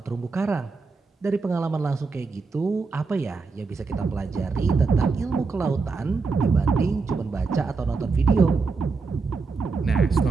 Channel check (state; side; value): quieter; left; 4.4 dB